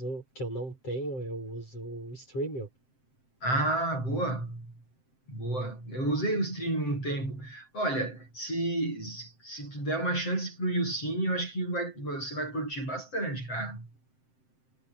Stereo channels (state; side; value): late; right; 7.7 ms